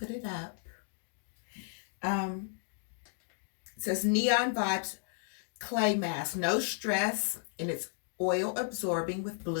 it up. It says Neon Vibes Clay Mask. No stress, and it's oil absorbing with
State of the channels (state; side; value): silent; right; digital silence